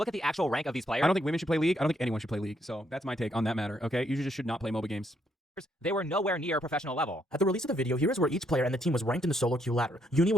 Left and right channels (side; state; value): both; normal; correlation 0.74